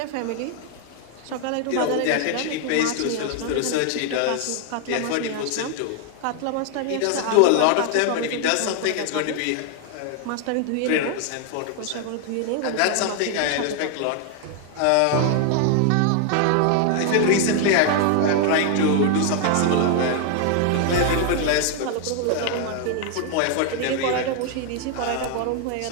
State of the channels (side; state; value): both; different; correlation 0.00